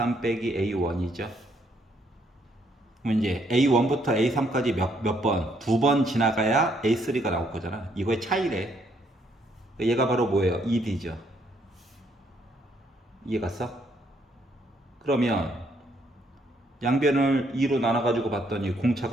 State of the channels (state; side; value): normal; both; correlation 0.70